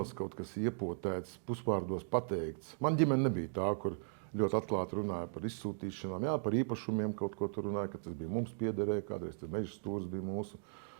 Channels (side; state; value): left; silent; digital silence